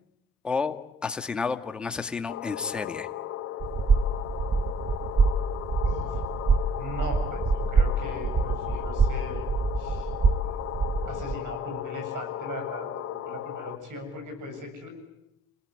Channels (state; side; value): normal; both; correlation 0.62